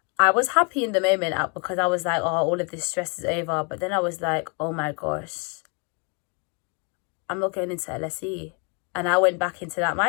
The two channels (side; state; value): right; quieter; 35.8 dB